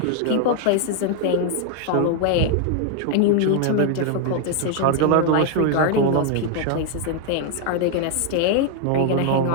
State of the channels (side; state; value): both; different; correlation 0.00